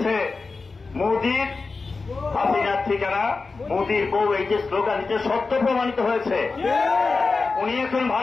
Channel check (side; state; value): right; quieter; 4.1 dB